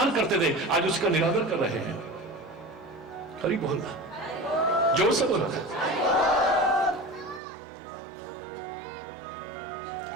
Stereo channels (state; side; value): drops out; left; at 7.4 s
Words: करते थे, आज उसका निरादर कर रहे हैं। करीब बोलना, जोर से बोलना।